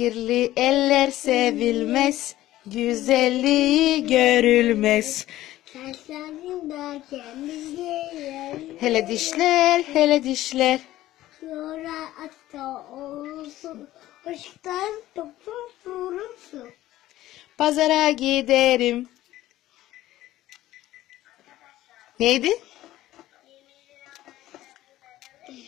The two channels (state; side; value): quieter; right; 15.1 dB